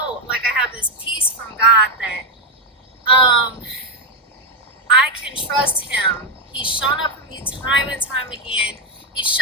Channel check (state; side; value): normal; both; correlation 0.04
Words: I have this peace from God that I can trust him. He's shown up for me time and time again. He